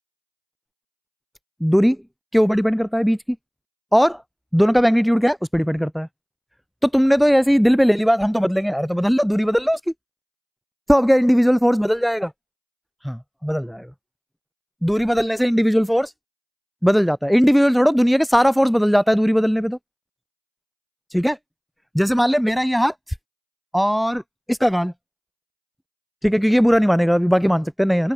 दूरी के ऊपर डिपेंड करता है बीच की, और दोनों का मैग्नीट्यूड क्या है उस पर डिपेंड करता है। तो तुमने तो ऐसे ही दिल पे ले ली बात, हम तो बदलेंगे। अरे तो बदल लो, दूरी बदल लो उसकी, तो अब क्या इंडिविजुअल फोर्स बदल जाएगा? हाँ बदल जाएगा। दूरी बदलने से इंडिविजुअल फोर्स बदल जाता है। इंडिविजुअल छोड़ो, दुनिया के सारा फोर्स बदल जाता है दूरी बदलने पे तो। ठीक है, जैसे मान ले मेरा ये हाथ और इसका गाल, ठीक है, क्योंकि ये बुरा नहीं मानेगा अभी, बाकी मान सकते हैं, नहीं है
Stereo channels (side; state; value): both; identical; correlation 1.00